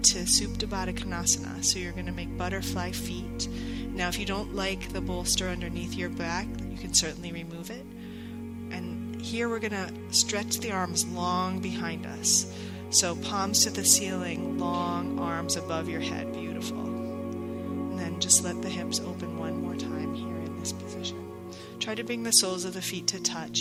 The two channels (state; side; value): identical; both; correlation 1.00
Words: Supta Baddha Konasana. So you're going to make butterfly feet. Now if you don't like the bolster underneath your back, you can certainly remove it. And here we're going to stretch the arms long behind us. So palms to the ceiling, long arms above your head. Beautiful. And then just let the hips open one more time here in this position. Try to bring the soles of the feet to